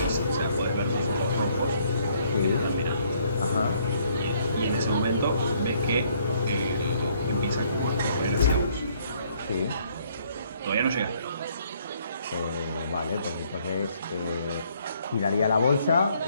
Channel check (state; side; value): inverted; both; correlation -0.66